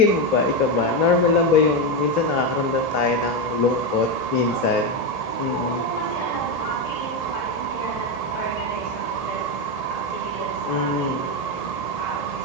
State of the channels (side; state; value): right; late; 1.8 ms